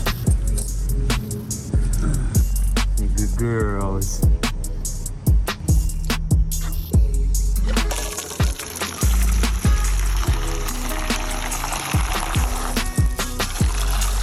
You good girls.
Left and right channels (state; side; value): identical; both; correlation 1.00